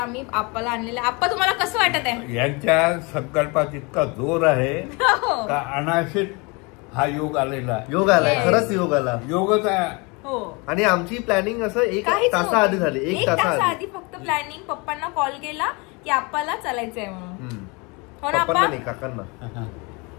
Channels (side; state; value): right; quieter; 28.7 dB